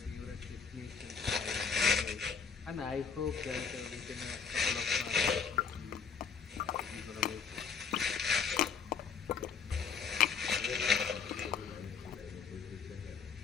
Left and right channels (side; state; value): right; quieter; 6.1 dB